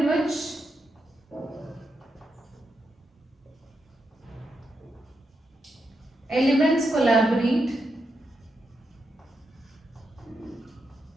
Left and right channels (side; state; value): both; normal; correlation 0.84